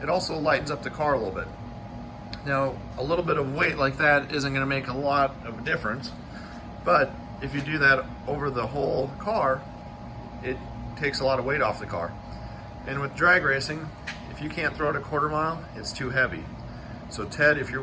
it also lightens up the car a little bit. Now, a little bit of weight like that isn't going to make a lot of difference, but if you do that over the whole car, it takes a lot of weight off the car. And with drag racing, if you can't throw it a quarter mile, it's too heavy. So Ted, if you're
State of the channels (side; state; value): both; identical; correlation 1.00